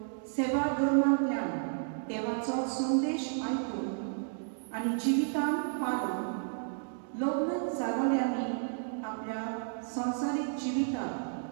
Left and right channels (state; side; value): silent; left; digital silence